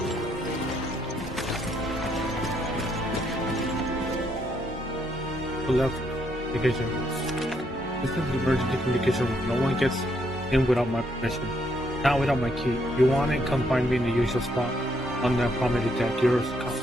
left communication. This is the emergency communication room. No one gets in without my permission. Not without my key. If you want it, come find me in the usual spot. On the promenade deck. Yours.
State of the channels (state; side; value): normal; both; correlation 0.73